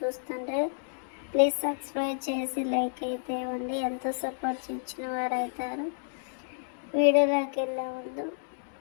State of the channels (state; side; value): silent; right; 58 dB below the other